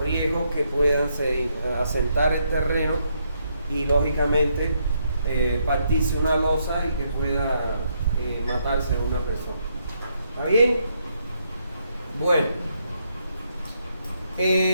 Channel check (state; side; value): inverted; both; correlation -0.76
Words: riesgos que puedan asentar el terreno y lógicamente partirse una losa y que pueda matarse una persona. ¿Está bien? Bueno,